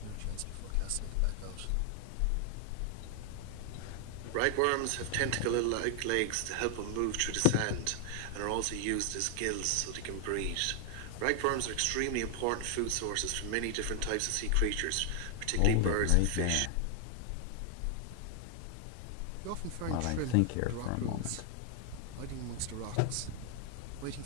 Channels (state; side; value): different; both; correlation 0.00